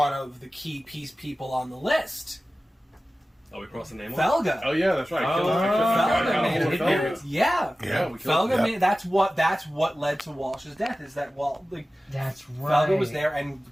of the key people on the list. Oh, we crossed the name. Felga. Oh yeah, that's right. Felga made an appearance. Yeah. Yeah, we killed Felga him. made that's what led to Walsh's death. Is that That's right. Felga was there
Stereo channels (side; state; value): both; normal; correlation 0.96